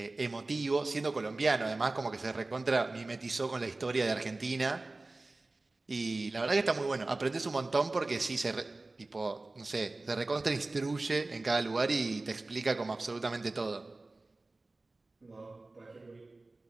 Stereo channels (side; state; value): left; quieter; 3.2 dB